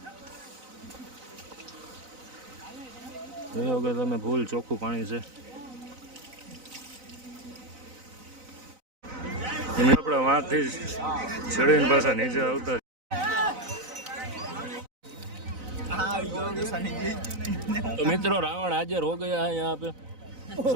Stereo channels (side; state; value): left; late; 4.0 ms